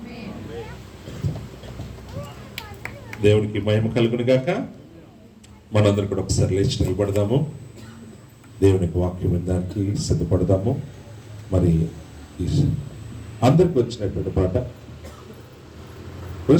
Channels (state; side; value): identical; both; correlation 1.00